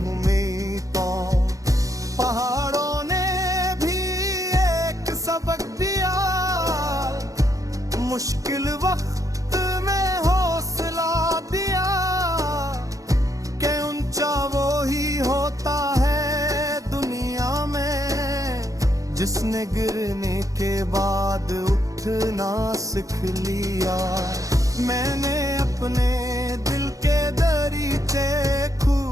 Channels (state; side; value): late; left; 0.16 ms